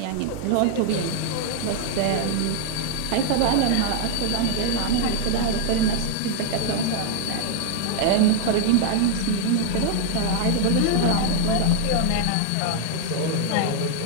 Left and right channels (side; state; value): both; different; correlation 0.00